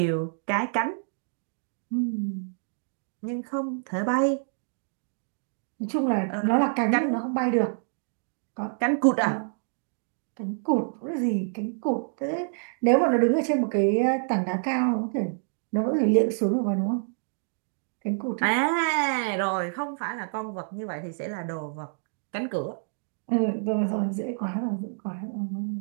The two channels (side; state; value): left; silent; digital silence